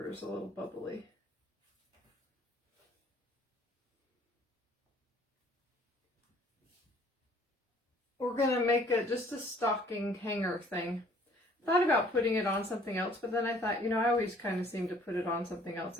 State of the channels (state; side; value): normal; both; correlation 0.57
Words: is a little bubbly. We're gonna make it just a stocking hanger thing. Thought about putting it on something else, but then I thought, you know, I always kind of seem to put it on something else.